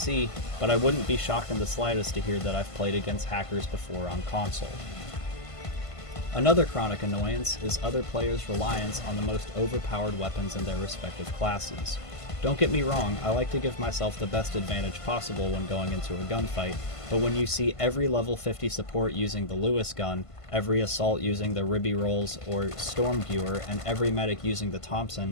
but I wouldn't be shocked in the slightest to hear that I've played against hackers before on console. Another chronic annoyance is other players' reliance on the most overpowered weapons in their respective classes. Don't get me wrong, I like to give myself the best advantage possible when going into a gunfight, but when you see every level 50 support using the Lewis gun, every assault using the Ribby Rolls or Stormgewer, and every medic using the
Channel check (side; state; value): right; late; 1.5 ms